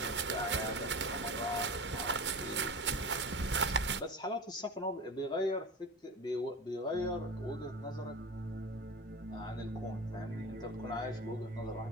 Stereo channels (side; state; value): both; normal; correlation 0.30